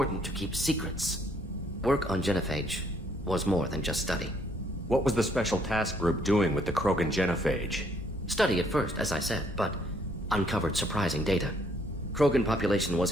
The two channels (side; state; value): both; normal; correlation 0.67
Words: to keep secrets. Work on genophage was more than just study. What was the Special Task Group doing with the Krogan genophage? Study at first, as I said, but uncovered surprising data. Krogan population